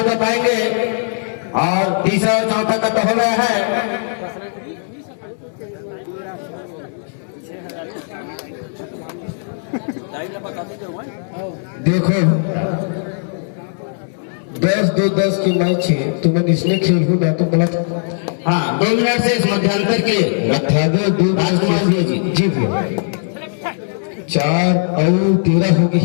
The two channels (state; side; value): silent; right; digital silence